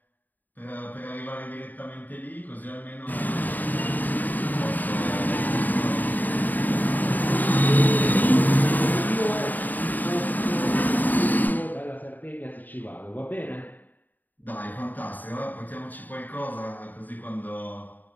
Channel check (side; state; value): right; late; 0.085 ms